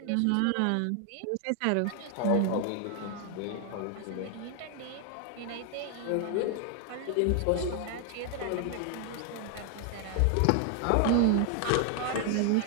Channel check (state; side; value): different; both; correlation 0.00